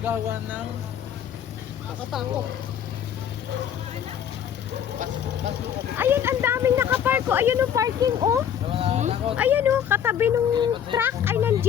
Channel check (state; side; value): quieter; right; 9.1 dB